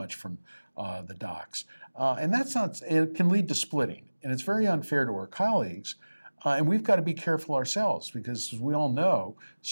from the docs. And it can lead to splitting, and it's very unfair to our colleagues. And we've got to be careful ourselves because, as we all know,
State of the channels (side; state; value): both; inverted; correlation -1.00